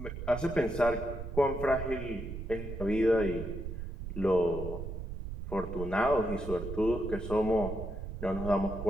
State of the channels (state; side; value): noise; right; rumble, 7 dB below the sound